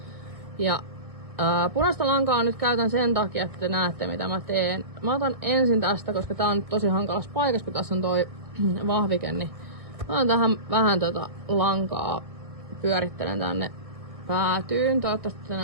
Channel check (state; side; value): late; left; 1.6 ms